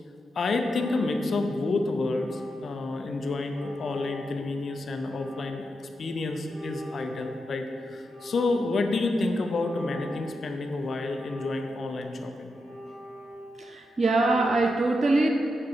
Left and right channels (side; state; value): both; normal; correlation 0.86